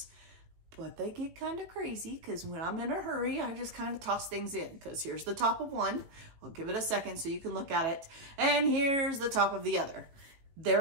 but they get kind of crazy because when I'm in a hurry, I just kind of toss things in, because here's the top of one. I'll give it a second so you can look at it, and here's the top of the other.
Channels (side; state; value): left; late; 18 ms